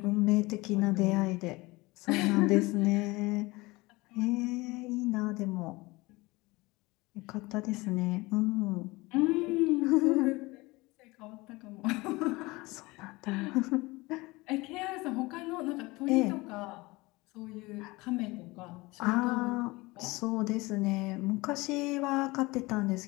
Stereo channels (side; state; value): right; quieter; 22.4 dB